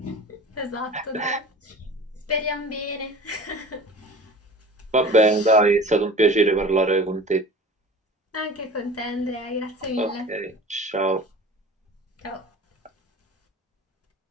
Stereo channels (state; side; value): normal; both; correlation 0.40